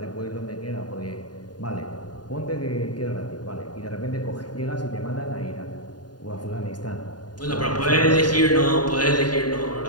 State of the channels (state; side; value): late; right; 0.70 ms